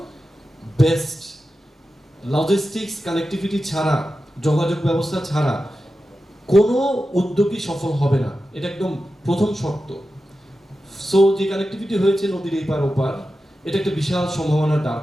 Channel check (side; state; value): both; normal; correlation 0.92